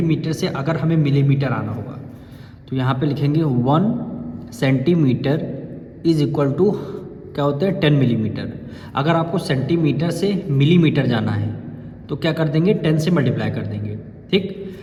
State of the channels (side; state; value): both; identical; correlation 1.00